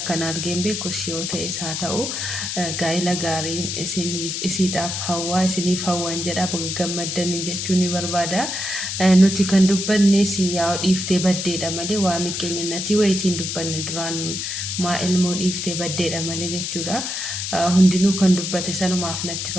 argeen beeku yoo ta'es haa ta'u gaa'ila gaariin isiidhaaf hawwaa isiniif hawwan jedha baga gammaddan jechuun ni barbaada. Nuti kan dubbanne siyaa dhiiftee baddeedha malee waa miqqeenyannati wayitiin dubbanne duraan maa ilmoo dhiiftee baddeedha malee jechuudha. Hundinuu kan dubbate sanumaaf natti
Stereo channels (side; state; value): left; noise; hiss, 3 dB below the sound